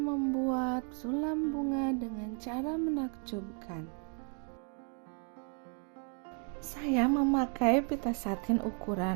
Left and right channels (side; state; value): left; quieter; 38.4 dB